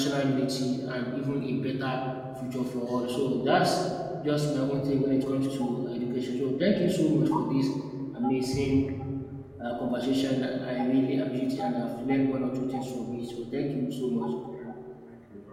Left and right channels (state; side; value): identical; both; correlation 1.00